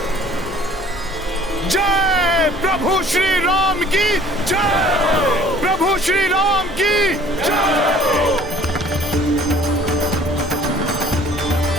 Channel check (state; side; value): normal; both; correlation 0.52